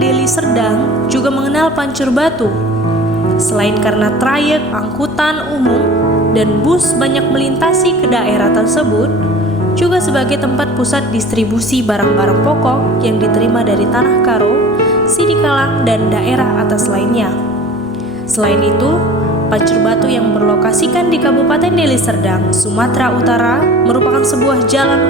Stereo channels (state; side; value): normal; both; correlation 0.42